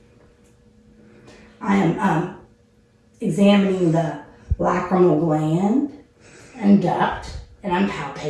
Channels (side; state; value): both; identical; correlation 1.00